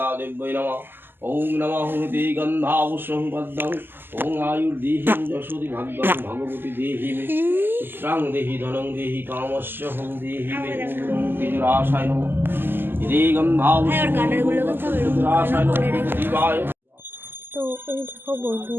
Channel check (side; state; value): left; late; 0.097 ms